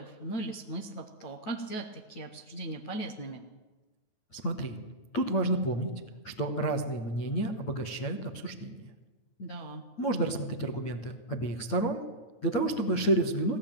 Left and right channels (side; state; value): right; late; 9.3 ms